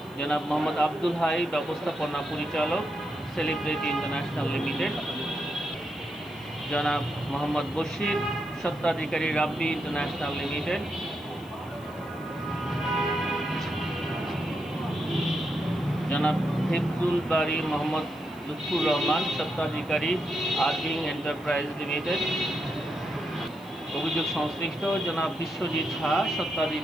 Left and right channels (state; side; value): noise; left; hiss, 26 dB below the sound